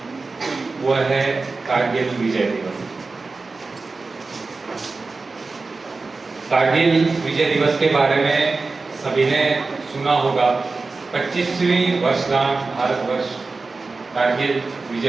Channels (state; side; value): quieter; left; 3.9 dB